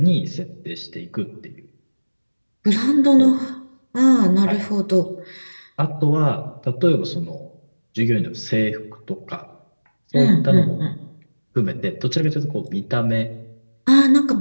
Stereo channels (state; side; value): inverted; both; correlation -1.00